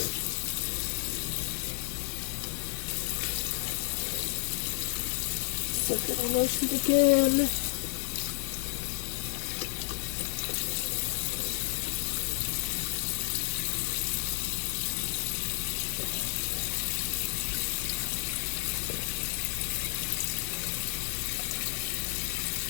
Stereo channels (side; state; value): right; silent; 57 dB below the other